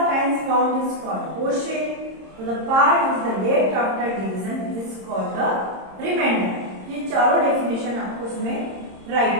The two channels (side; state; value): left; late; 26 ms